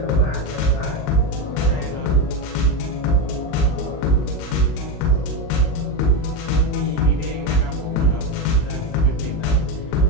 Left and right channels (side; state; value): right; late; 34 ms